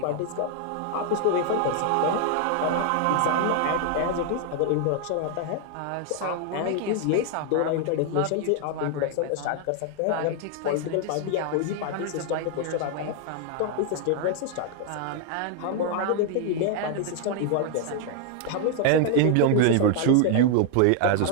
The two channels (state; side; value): different; both; correlation 0.00